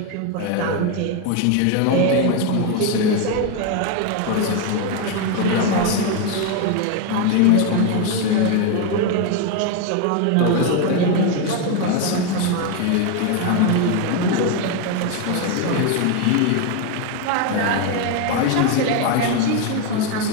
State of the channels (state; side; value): different; both; correlation 0.02